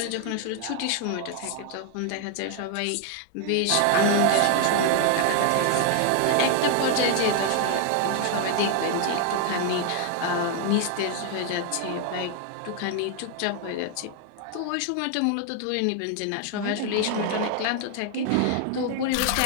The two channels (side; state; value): both; different; correlation 0.00